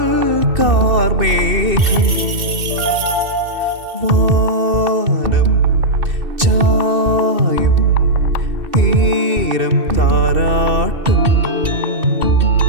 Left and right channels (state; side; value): late; left; 2.7 ms